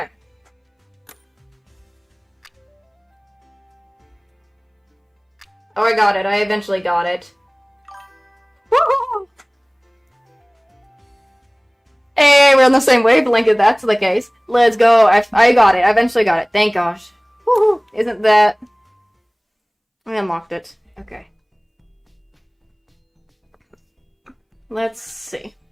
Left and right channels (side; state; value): both; identical; correlation 1.00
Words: Oh, I got it. I eventually got it. Woo! Hey, we're on the same wavelength if that's the case. Let's go. I got it. I eventually got it. Thank gosh. Woohoo! Isn't that... I unlocked it. Okay. Let's see.